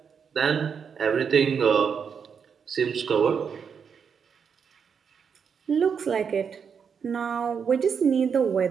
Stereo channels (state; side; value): quieter; left; 6.7 dB